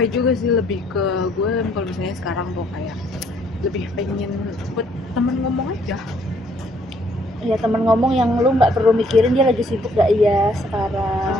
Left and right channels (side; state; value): both; normal; correlation 0.65